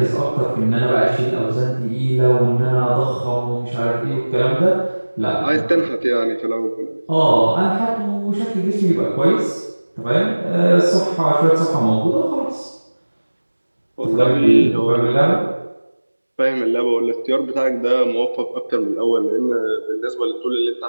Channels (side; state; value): both; inverted; correlation -1.00